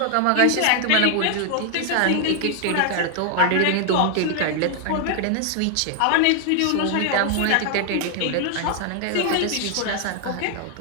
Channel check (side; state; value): both; different; correlation 0.00